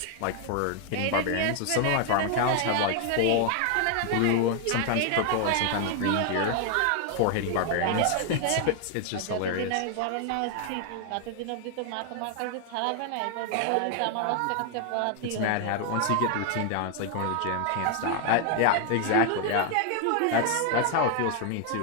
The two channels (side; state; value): both; different; correlation 0.00